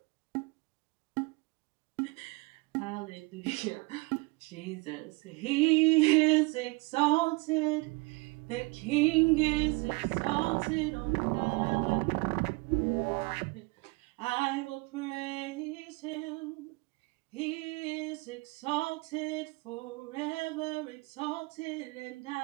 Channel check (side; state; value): left; quieter; 26.9 dB